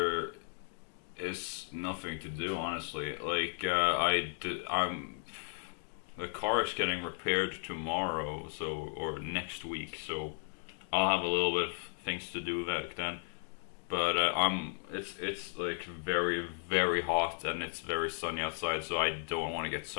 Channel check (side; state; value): right; silent; 54 dB below the other